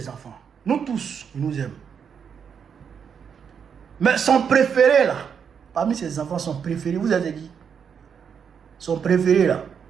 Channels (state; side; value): quieter; left; 7.1 dB